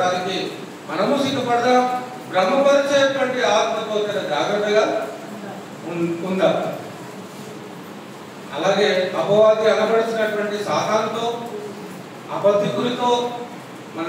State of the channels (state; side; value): identical; both; correlation 1.00